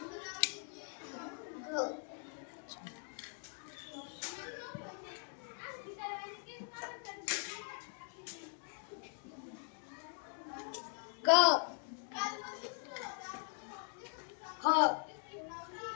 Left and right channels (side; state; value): right; silent; 50 dB below the other